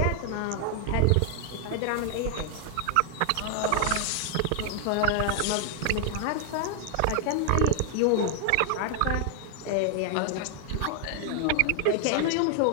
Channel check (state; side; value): different; both; correlation 0.00